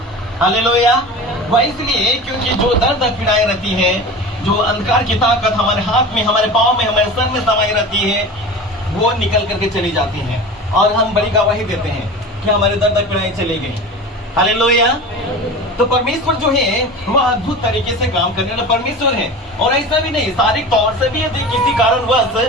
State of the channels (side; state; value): both; normal; correlation 0.33